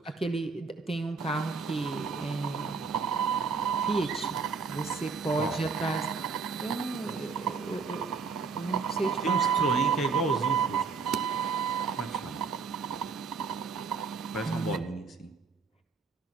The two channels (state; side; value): quieter; left; 5.0 dB